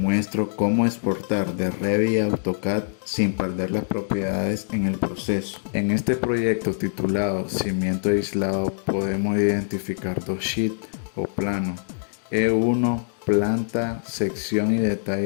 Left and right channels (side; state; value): right; silent; digital silence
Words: cómo exportar de Revit a AutoCAD sin perder las propiedades en el proceso. En este proyecto titulado Cimiento aislado podemos identificar dos sheets o planos: E1 planta, sección y